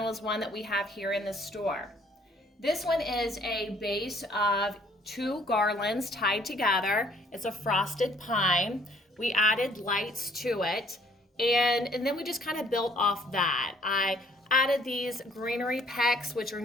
is one that we have here in the store. This one is a base of two garlands tied together. It's a frosted pine. We added lights to it, and then we just kind of built off that. I added these greenery pecks, which are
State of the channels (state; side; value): normal; both; correlation 0.61